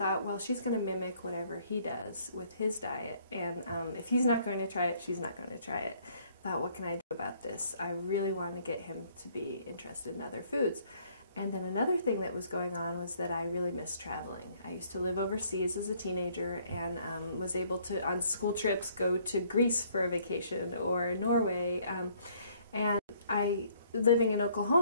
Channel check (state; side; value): inverted; both; correlation -0.64